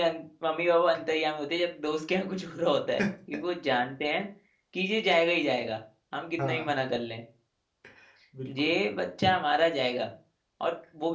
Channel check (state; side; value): identical; both; correlation 1.00